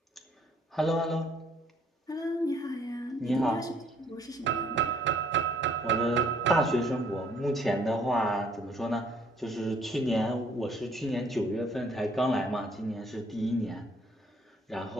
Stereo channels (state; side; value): normal; both; correlation 0.63